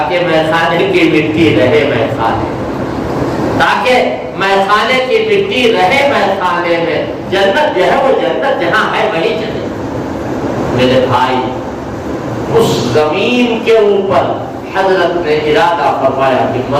میخانے کی مٹی رہے میخانے، تاکہ میخانے کی مٹی رہے میخانے میں۔ جنت جو ہے وہ جنت جہاں ہے وہی چلے۔ میرے بھائی، اس زمین کے اوپر حضرت نے ارادہ فرمایا کہ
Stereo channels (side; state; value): both; identical; correlation 1.00